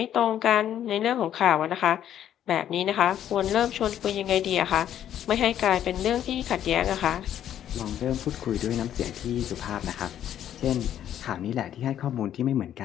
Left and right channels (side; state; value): right; quieter; 10.7 dB